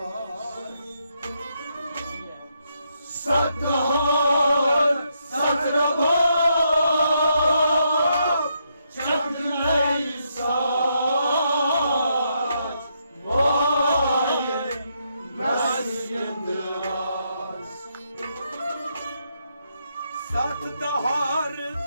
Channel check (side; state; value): both; inverted; correlation -0.78